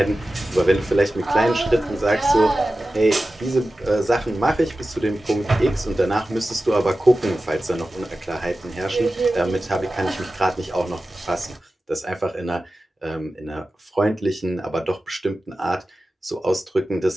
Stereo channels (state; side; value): normal; both; correlation 0.94